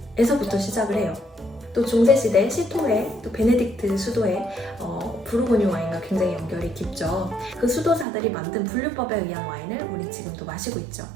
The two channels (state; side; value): drops out; left; at 8.1 s